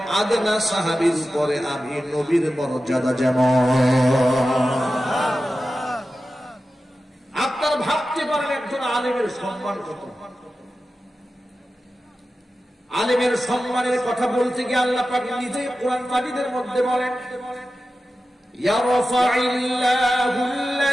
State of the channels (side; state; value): both; normal; correlation 0.93